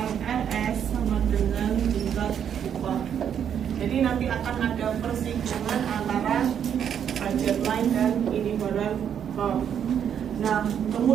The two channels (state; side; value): quieter; left; 8.6 dB